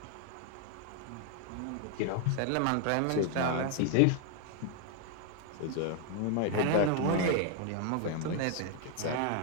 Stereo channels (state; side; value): different; both; correlation 0.00